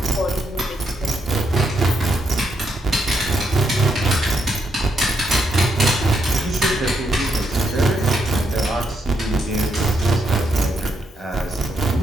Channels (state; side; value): normal; both; correlation 0.79